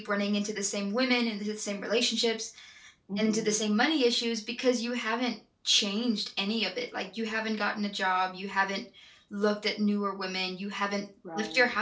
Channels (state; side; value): identical; both; correlation 1.00